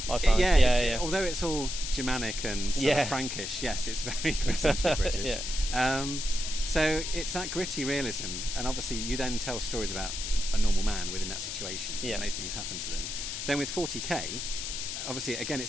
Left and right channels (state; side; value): noise; left; hiss, 5 dB below the sound